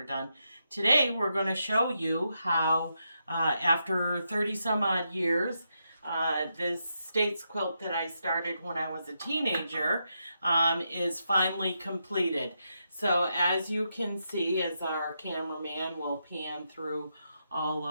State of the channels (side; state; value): both; inverted; correlation -0.83